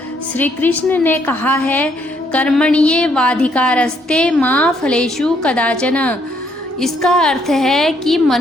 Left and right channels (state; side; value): normal; both; correlation 0.70